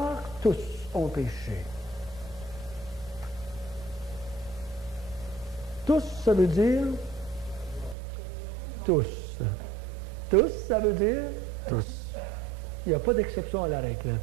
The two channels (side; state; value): left; drops out; at 8.0 s